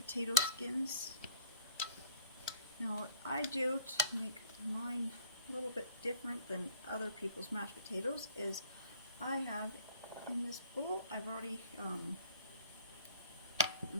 skins. Now what I do to make mine a little bit different than other people's mashed potatoes is I have in this bowl, I've already kind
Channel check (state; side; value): inverted; both; correlation -0.57